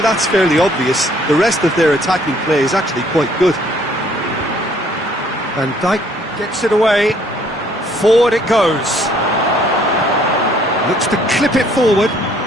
fairly obvious, the rest of their attacking play is actually quite good. Van Dijk gets it away. Forward it goes. Looks to clip it forward.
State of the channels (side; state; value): both; normal; correlation 0.62